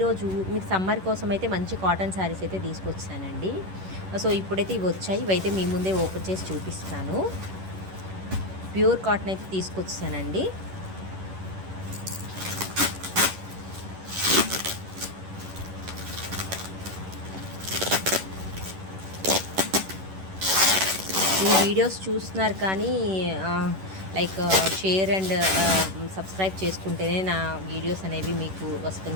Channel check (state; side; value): late; left; 11 ms